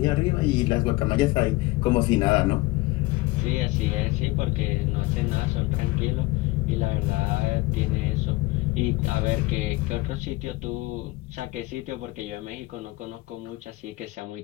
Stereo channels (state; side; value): quieter; right; 20.3 dB